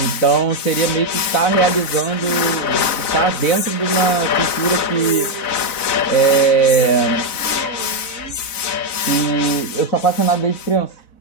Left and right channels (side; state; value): right; late; 4.0 ms